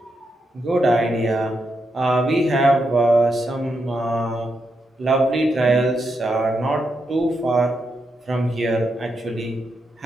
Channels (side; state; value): both; normal; correlation 0.83